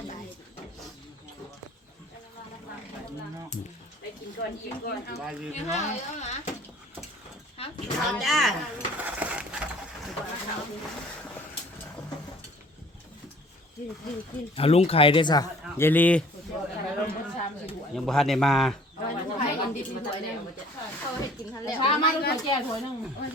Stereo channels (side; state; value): both; normal; correlation 0.52